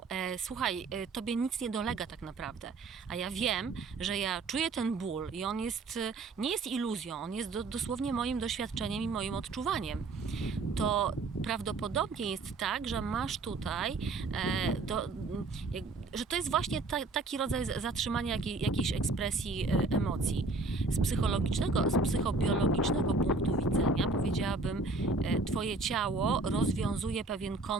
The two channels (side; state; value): left; quieter; 3.6 dB